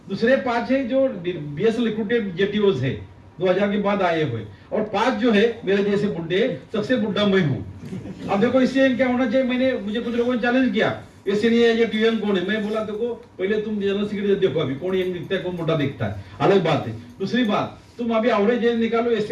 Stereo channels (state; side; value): identical; both; correlation 1.00